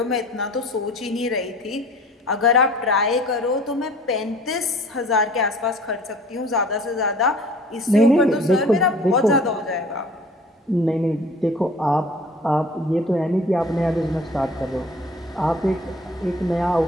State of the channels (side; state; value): both; normal; correlation 0.48